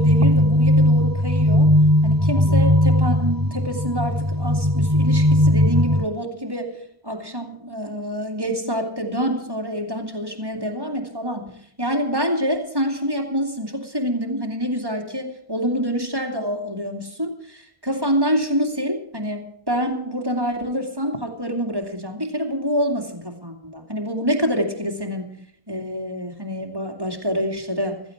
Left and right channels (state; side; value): late; left; 1.1 ms